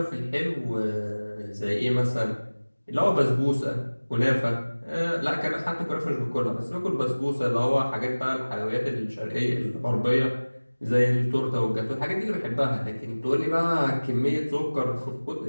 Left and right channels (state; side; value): inverted; both; correlation -1.00